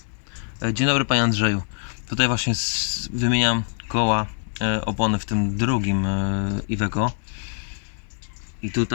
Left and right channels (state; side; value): silent; right; 63 dB below the other